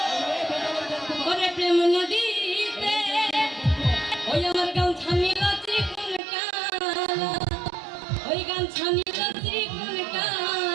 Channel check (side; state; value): left; drops out; at 6.2 s